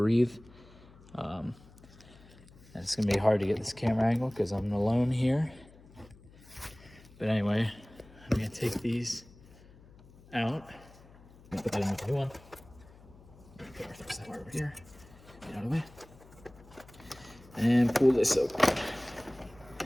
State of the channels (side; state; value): left; noise; hum, 23 dB below the sound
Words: And it's gonna be hard to get this camera angle because I'm alone here. But anyway, I'm gonna take these out. I'm gonna put that in with the new one. Put our thermostat wire over here. Get out of the way. And pull this open.